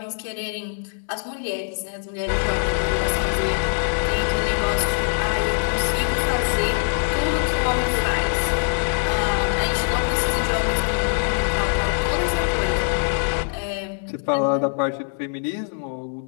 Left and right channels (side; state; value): right; silent; digital silence